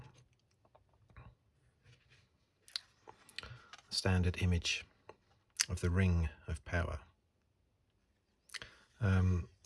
standard image of the Ring of Power.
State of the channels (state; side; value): identical; both; correlation 1.00